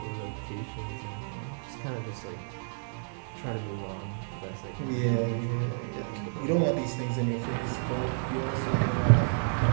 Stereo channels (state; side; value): silent; left; 57 dB below the other